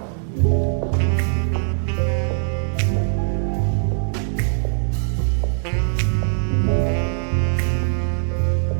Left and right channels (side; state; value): left; silent; 59 dB below the other